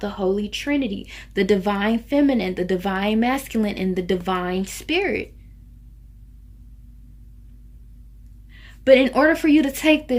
Holy Trinity, the divine feminine, the divine masculine, and the divine spirit. But in order for you to take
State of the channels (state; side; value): identical; both; correlation 1.00